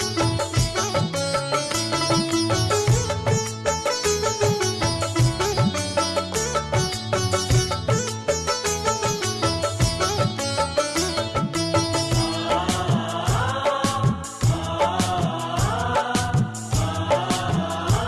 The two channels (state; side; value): identical; both; correlation 1.00